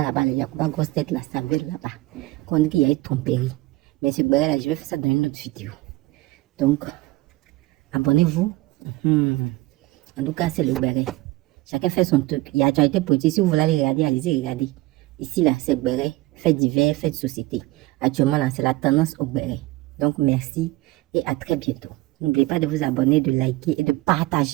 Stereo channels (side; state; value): left; quieter; 19.4 dB